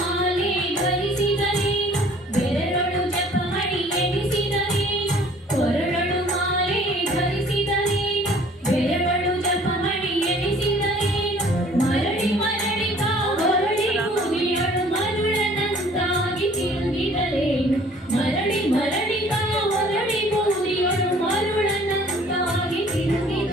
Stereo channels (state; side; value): normal; both; correlation 0.54